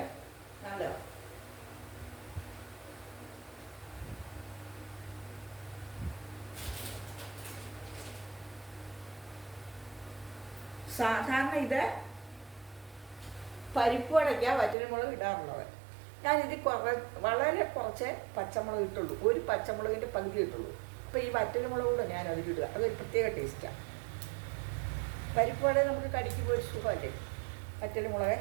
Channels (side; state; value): left; drops out; at 14.8 s